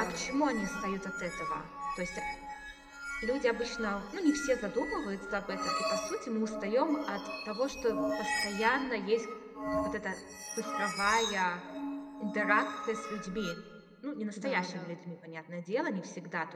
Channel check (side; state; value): both; identical; correlation 1.00